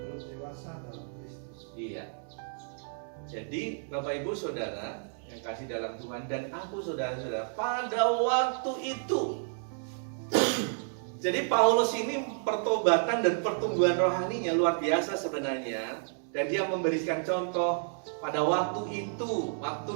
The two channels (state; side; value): silent; left; digital silence